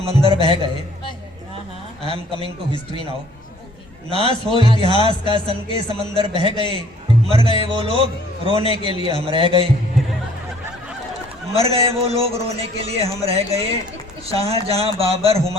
बह गए। I am coming to history now. नाश हो इतिहास का सन के समंदर बह गए, मर गए वो लोग रोने के लिए हम रह गए। मर गए वो लोग रोने के लिए हम रह गए। शाहजहां बाबर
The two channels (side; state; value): both; normal; correlation 0.57